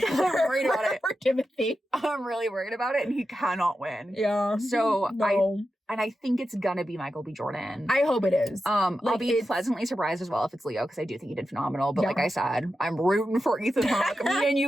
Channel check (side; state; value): both; normal; correlation 0.90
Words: I'm worried about it. for Timothy. I'm really worried about it, and he cannot win. Yeah. So, no. I think it's gonna be Michael B. Jordan. I hope it is. I'll be pleasantly surprised as well if it's Leo, because I do think he did phenomenal. But like I said, I'm rooting for Ethan Hawke. Me and